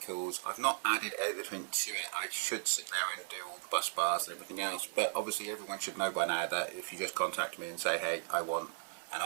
I've not added everything to it. I should sit there and do all the bus bars and everything else, but obviously everyone should know by now that if you just contact me and say, hey, I want and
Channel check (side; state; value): left; silent; digital silence